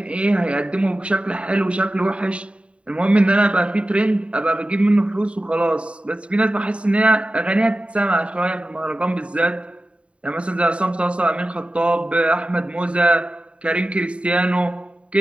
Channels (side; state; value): left; late; 0.061 ms